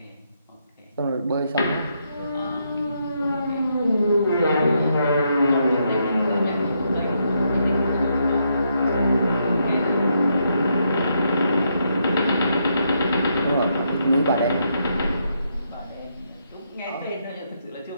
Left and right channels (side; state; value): both; inverted; correlation -0.78